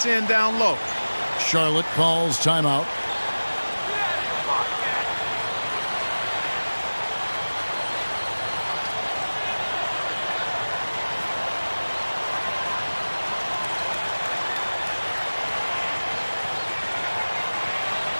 in down low. Charlotte calls timeout.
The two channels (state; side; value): inverted; both; correlation -1.00